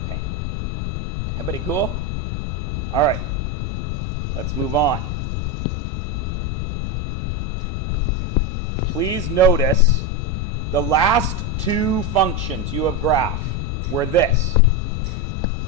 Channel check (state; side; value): noise; left; rumble, 1 dB below the sound